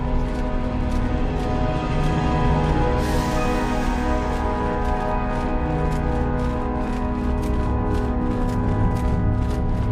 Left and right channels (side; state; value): both; identical; correlation 1.00